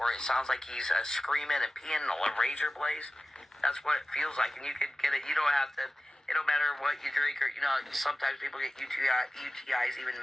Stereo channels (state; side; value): normal; both; correlation 0.95